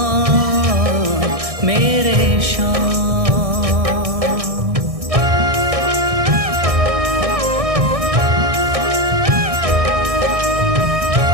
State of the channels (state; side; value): late; left; 1.6 ms